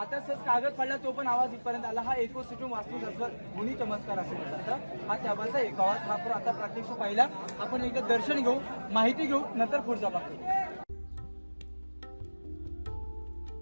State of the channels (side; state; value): both; inverted; correlation -1.00